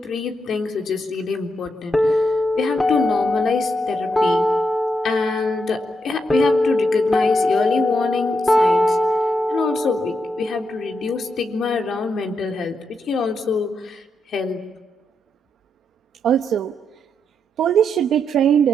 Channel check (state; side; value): normal; both; correlation 0.81